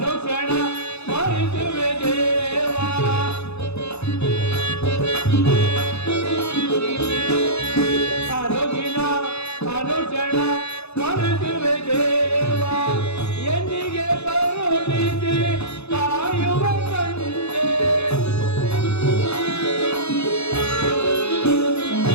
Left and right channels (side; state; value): right; late; 0.80 ms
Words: ಸ್ಮರಿಸುವೆ ದೇವ ಅನುದಿನ ಅನುಕ್ಷಣ ಸ್ಮರಿಸುವೆ ದೇವ ಎಂದಿಗೆ ಕರುಣಿಸಿ ಕಾಯುವ ತಂದೆ